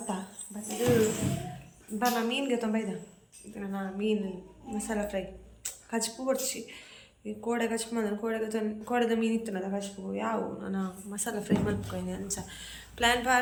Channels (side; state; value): both; identical; correlation 1.00